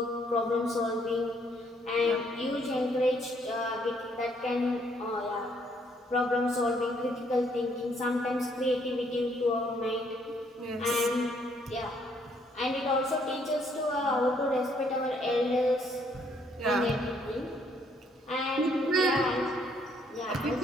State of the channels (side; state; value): both; normal; correlation 0.68